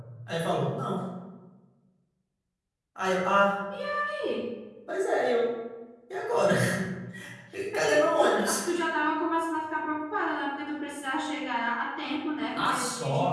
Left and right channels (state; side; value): identical; both; correlation 1.00